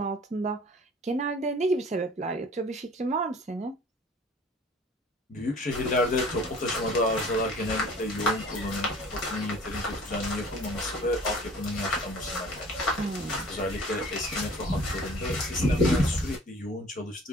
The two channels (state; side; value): normal; both; correlation 0.48